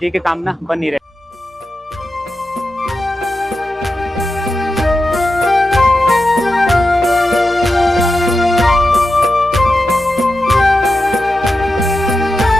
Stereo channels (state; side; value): normal; both; correlation 0.90